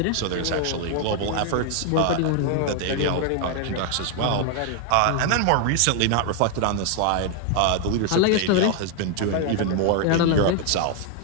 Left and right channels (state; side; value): different; both; correlation 0.00